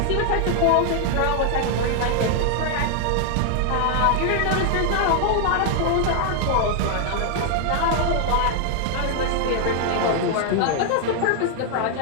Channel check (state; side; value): different; both; correlation 0.00